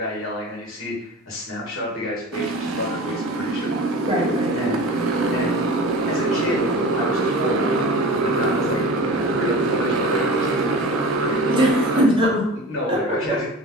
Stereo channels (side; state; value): both; normal; correlation 0.35